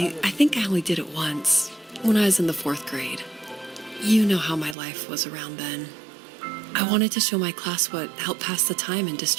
I think I only did it once, when I was in the 4th grade. You know how my life was around then. I wanted to show my class what helped pass the time and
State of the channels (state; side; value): drops out; left; at 4.8 s